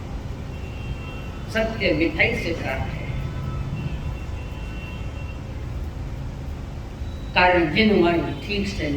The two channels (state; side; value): identical; both; correlation 1.00